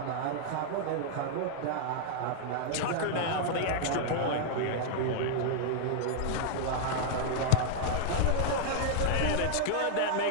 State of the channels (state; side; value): different; both; correlation -0.01